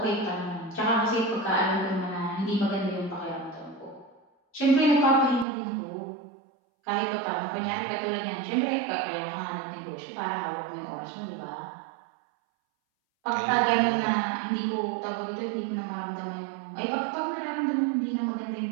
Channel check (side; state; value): left; drops out; at 5.5 s